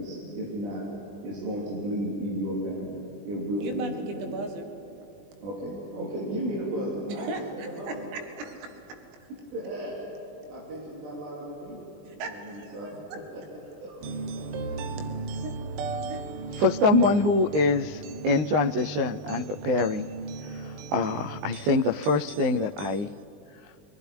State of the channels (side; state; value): left; late; 20 ms